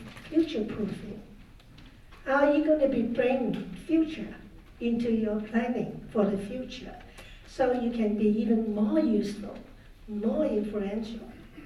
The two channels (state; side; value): identical; both; correlation 1.00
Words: future-proofing? How are you going to be bringing future into your planning for the future so you can be even more useful, more influential?